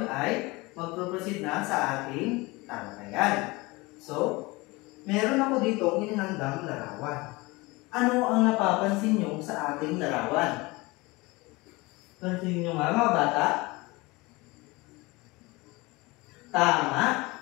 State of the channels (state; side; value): quieter; right; 23.4 dB